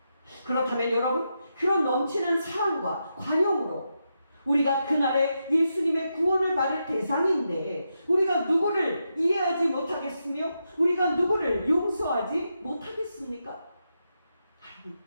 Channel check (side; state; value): both; inverted; correlation -0.85